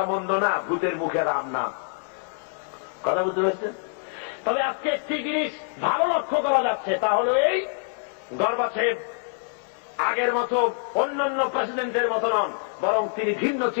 মন্দ না, ভূতের মুখে রাম নাম। কথা বুঝতে পারছেন? তবে আজকে একটি জিনিস ভালো লক্ষ্য করা যাচ্ছে, তা হল এই, গর্বাচেভ আগের মতো অন্যান্য প্রেসিডেন্টের মতো নন, বরং তিনি ভিন্ন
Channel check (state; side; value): silent; right; 61 dB below the other